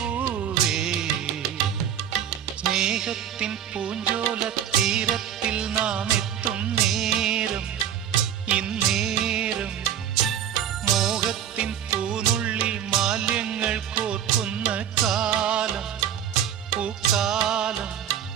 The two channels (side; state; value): left; quieter; 9.6 dB